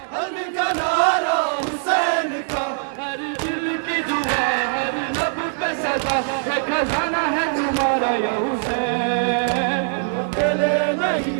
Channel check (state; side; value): silent; left; digital silence